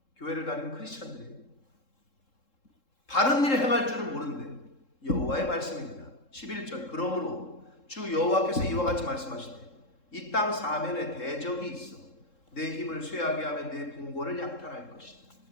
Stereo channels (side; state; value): right; late; 3.7 ms